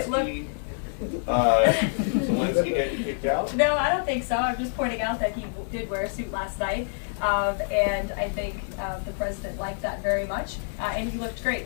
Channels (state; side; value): silent; right; 60 dB below the other